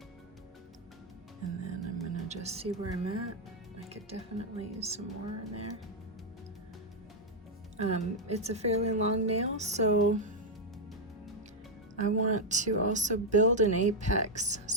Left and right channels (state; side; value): normal; both; correlation 0.00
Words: And then I'm going to just see where I'm at. I could definitely use some more in there. It's a fairly long nail, so I want to also build an apex.